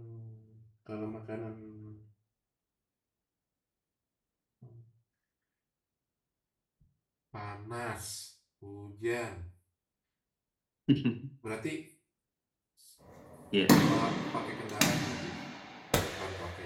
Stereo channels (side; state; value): both; identical; correlation 1.00